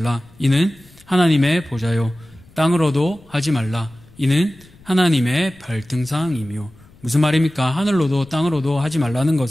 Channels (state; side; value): noise; left; rumble, 26 dB below the sound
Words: 이는 하나님의 보좌요. 땅으로도 하지 말라. 이는 하나님의 발등상이며. 무슨 말입니까? 하늘로도 땅으로도 하지 말라는